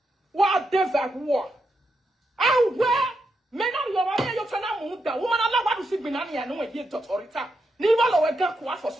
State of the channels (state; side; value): normal; both; correlation 0.83